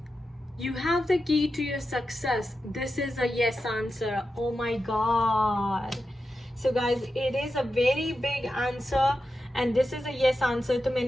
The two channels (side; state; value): both; normal; correlation 0.90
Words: You have the key to your success. This is a yes answer. Oh my god. So guys, it is a very big answer and this is a yes answer. तो